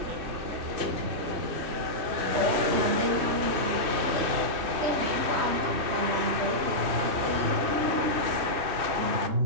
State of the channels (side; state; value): left; late; 2.6 ms